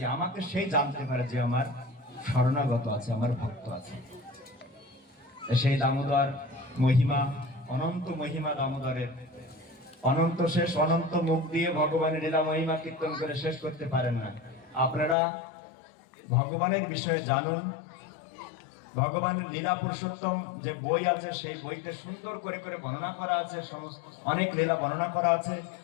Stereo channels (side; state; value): right; drops out; at 15.2 s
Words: আমাকে সেই জানতে পারে যে আমার শরণাগত আছে, আমার ভক্ত আছে। সেই দামোদর মহিমা, অনন্ত মহিমা দামোদরের, অনন্ত শেষ, অনন্ত মুখ দিয়ে ভগবানের লীলা মহিমা কীর্তন করে শেষ করতে পারেন না। আপনারা ভগবানের বিষয়ে জানুন। ভগবানের লীলা পুরুষোত্তম যে বই আছে, সেই বইতে সুন্দর করে করে বর্ণনা করা আছে, সমস্ত অনেক লীলা বর্ণনা করা আছে।